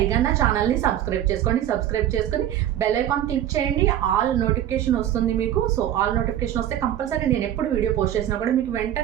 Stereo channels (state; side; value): quieter; left; 11.6 dB